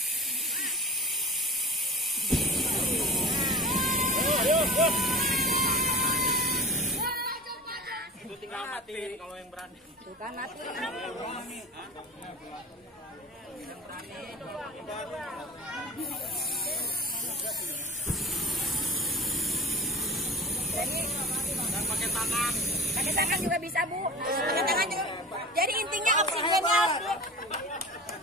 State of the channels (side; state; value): both; normal; correlation 0.37